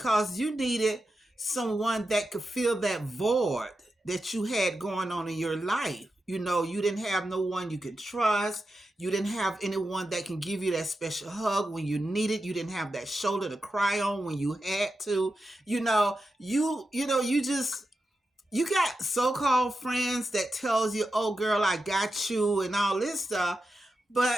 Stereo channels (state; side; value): normal; both; correlation 0.90